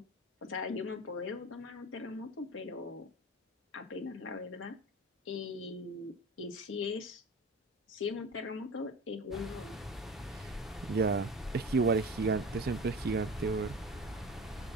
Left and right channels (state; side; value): normal; both; correlation 0.34